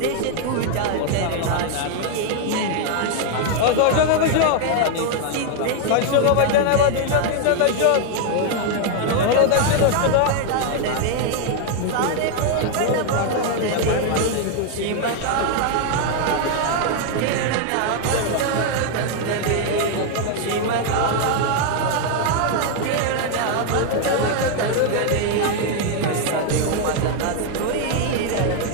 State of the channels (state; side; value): different; both; correlation 0.00